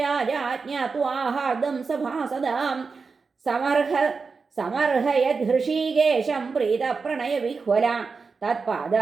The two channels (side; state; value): left; quieter; 4.8 dB